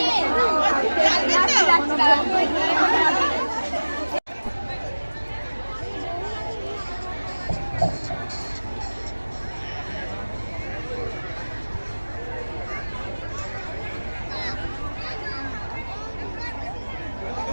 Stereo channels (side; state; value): both; inverted; correlation -1.00